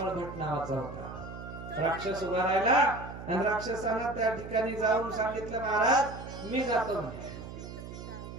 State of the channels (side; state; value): right; noise; hum, 11 dB below the sound